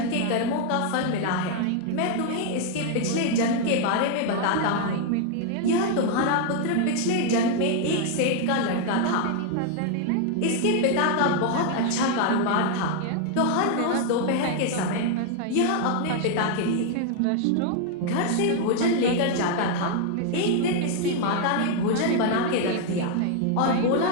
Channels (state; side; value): different; both; correlation 0.00